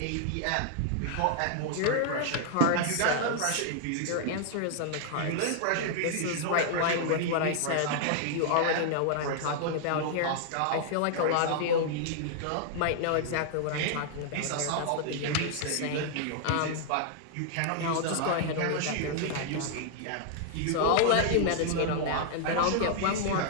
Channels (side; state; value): both; different; correlation -0.01